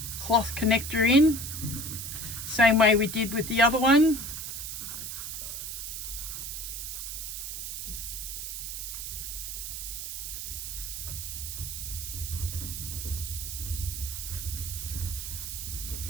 cloth connector in, same way we did with the other one.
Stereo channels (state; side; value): noise; right; hiss, 5 dB below the sound